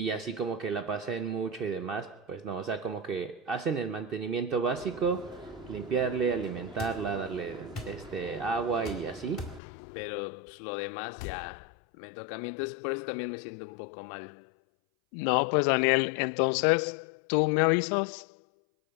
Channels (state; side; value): drops out; right; at 9.6 s